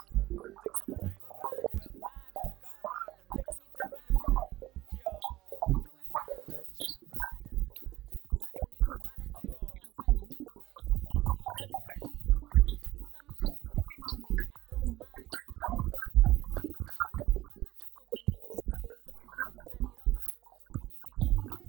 Take some time and refuel. Karada, take some time and refuel. Yo, we do it for the masses. Rada, bado niko rada, even though I went mute. Niko Korada, see, I had some of you been sleeping on me. I don't mind, I'm the girl of your dreams now. Let's see on the hustle when you see them brave. Turn it off, we need big gaze.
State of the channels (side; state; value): left; quieter; 16.6 dB